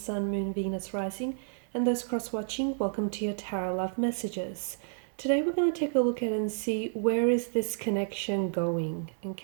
Moon, Venus, Rising, and those cross-watching, welcome to your Tarot Love Messages. Today we're going to take a look at and see where is this connection going,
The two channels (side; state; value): left; silent; 58 dB below the other